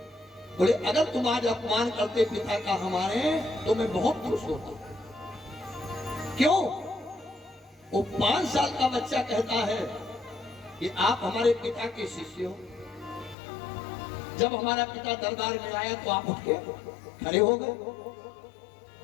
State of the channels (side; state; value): right; drops out; at 13.4 s